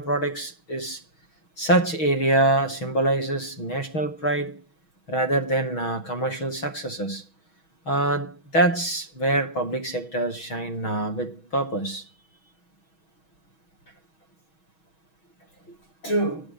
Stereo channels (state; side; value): late; right; 6.2 ms